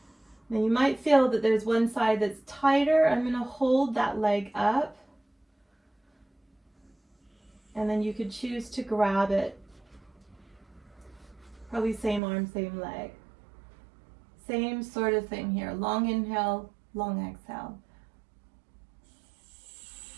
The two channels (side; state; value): left; drops out; at 12.2 s